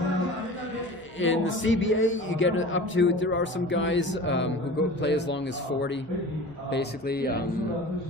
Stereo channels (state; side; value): normal; both; correlation 0.38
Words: in the CBA, you get up to, there are some guys who play as long as 40, basically.